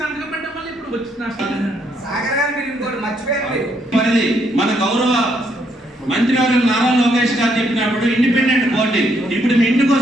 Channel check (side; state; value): both; normal; correlation 0.73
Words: సంతకం పెట్టడం వల్ల ఇప్పుడు వచ్చిన పరిధి మన గౌరవ మంత్రివర్యులు నారా లోకేష్ గారు చెప్పినప్పుడు ఇండిపెండెంట్ బాడీ. ఇప్పుడు మీ ఇంటికి